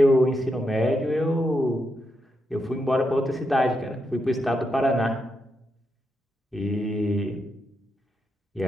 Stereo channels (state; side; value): normal; both; correlation 0.83